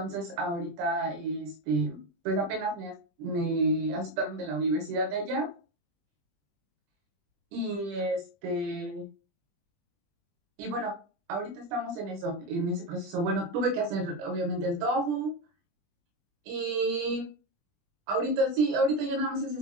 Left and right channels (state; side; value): late; left; 20 ms